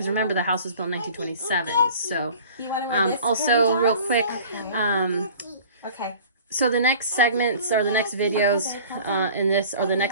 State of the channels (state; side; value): inverted; both; correlation -0.46